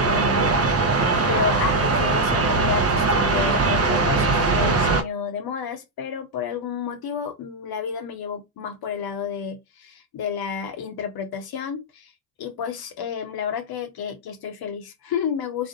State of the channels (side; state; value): both; normal; correlation -0.01